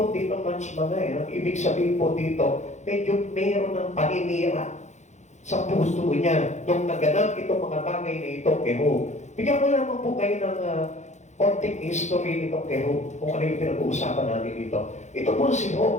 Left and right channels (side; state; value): right; late; 0.34 ms